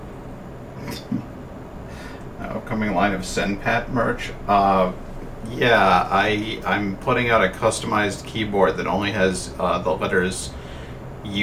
upcoming line of SendPat merch. Yeah, I'm putting out a customized keyboard that only has the letters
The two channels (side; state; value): both; identical; correlation 1.00